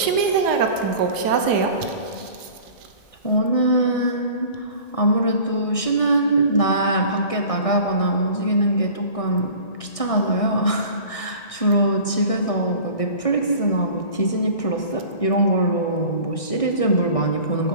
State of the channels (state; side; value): late; right; 1.6 ms